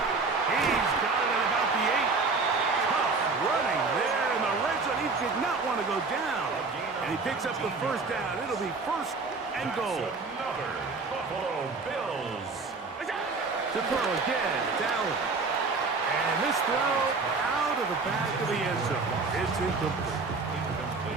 He's got it at about the 8. Tough running there in the red zone. He did not want to go down. And he picks up the 1st down. It'll be 1st and goal. Another Buffalo Bills. To throw again, it's Allen. And this throw out of the back of the end zone. It's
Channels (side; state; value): left; quieter; 4.1 dB